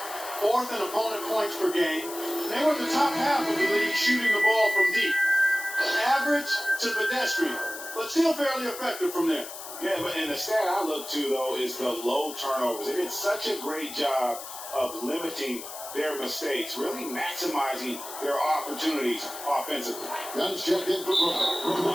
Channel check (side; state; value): left; noise; hiss, 11 dB below the sound